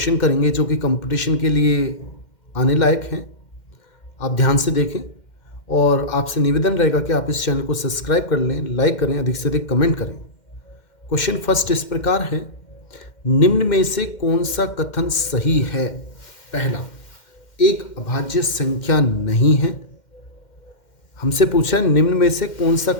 करेंगे जो कि कंपटीशन के लिए आने लायक हैं। आप ध्यान से देखें और आपसे निवेदन रहेगा कि आप इस चैनल को सब्सक्राइब कर लें, लाइक करें, अधिक से अधिक कमेंट करें। क्वेश्चन फर्स्ट इस प्रकार है, निम्न में से कौन सा कथन सही है? पहला, एक अभाज्य संख्या नहीं है। हमसे पूछा है निम्न में से कौन सा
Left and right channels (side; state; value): right; late; 2.1 ms